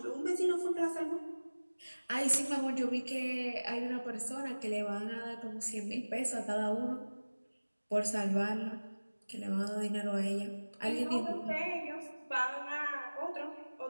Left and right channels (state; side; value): inverted; both; correlation -1.00